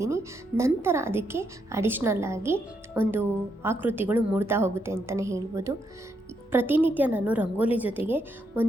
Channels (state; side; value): normal; both; correlation 0.78